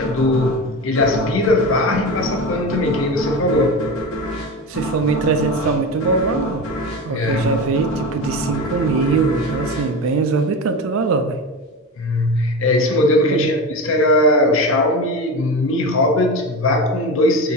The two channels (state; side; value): normal; both; correlation 0.25